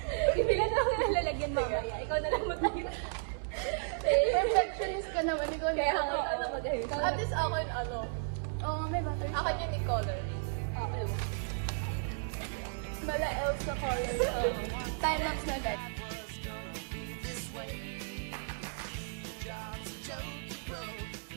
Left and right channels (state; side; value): silent; left; 55 dB below the other